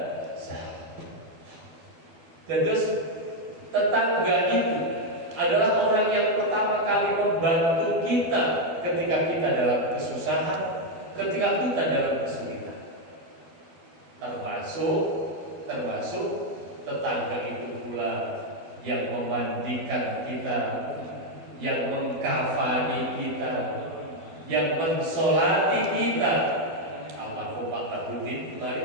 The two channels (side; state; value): left; late; 12 ms